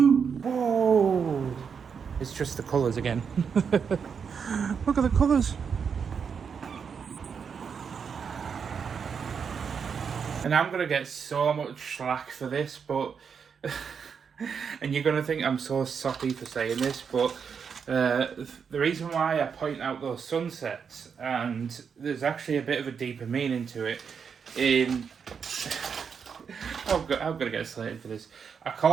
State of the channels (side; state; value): left; quieter; 6.5 dB